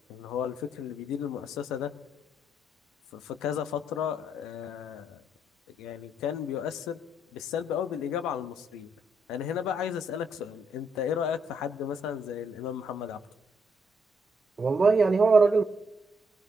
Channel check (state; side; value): normal; both; correlation 0.74